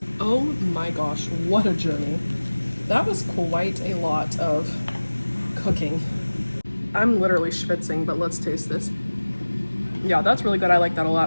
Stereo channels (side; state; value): both; inverted; correlation -1.00